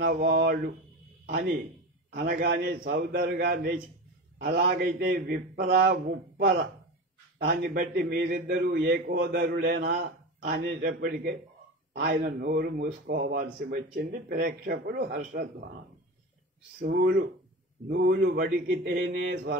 వాళ్ళు అని అనగానే సోదరుగా లేచి అలాగైతే విప్ర ఉప్పర దాన్ని బట్టి మీరిద్దరూ ఏకోదరులేనా అనేటప్పటికే ఆయన నోరు మూసుకోవాల్సి వచ్చింది. ప్రేక్షకులు హర్షధ్వానం. నూలు వడికితేనే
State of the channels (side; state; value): both; normal; correlation 0.27